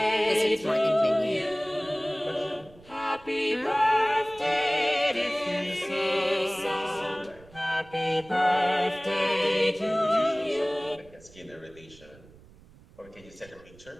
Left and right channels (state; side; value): noise; right; rumble, 24 dB below the sound